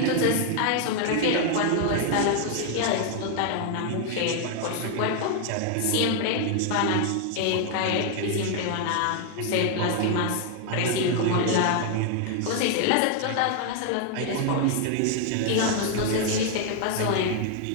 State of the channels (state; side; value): different; both; correlation 0.00